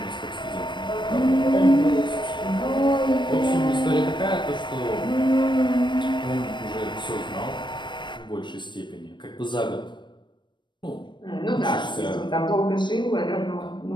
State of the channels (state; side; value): late; right; 0.22 ms